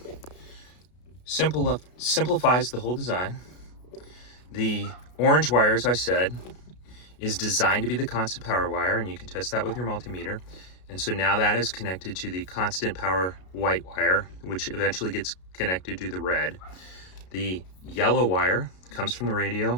Simplifies the whole design. The orange wire, as I said, is designed to be the constant power wire, and you can test that with your multimeter. And so now that is connected to the constant power white wire, which eventually gets connected to the red. The yellow wire comes from the radio.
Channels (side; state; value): right; late; 33 ms